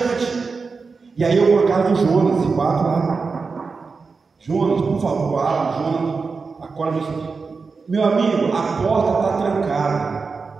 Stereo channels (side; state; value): left; quieter; 4.6 dB